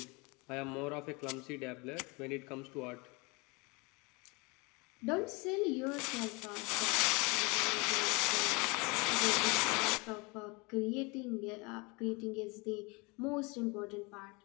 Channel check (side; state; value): right; quieter; 27.9 dB